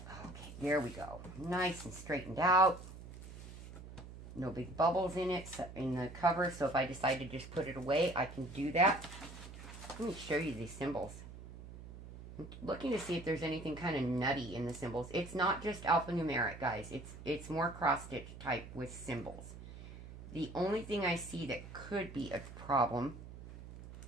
Okay, there we go. Nice and straightened out. No big bubbles in it, in the cover, so if I decide to just put it away, I can do that. Let me show you these symbols. I'm looking to see if there's anything kind of nutty in the symbols. It's not just alphanumeric, guys. It's more cross-stitch type with symbols. The only thing I see that could be a problem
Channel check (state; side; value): noise; right; hum, 14 dB below the sound